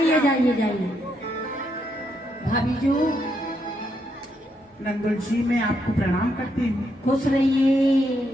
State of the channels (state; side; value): normal; both; correlation 0.78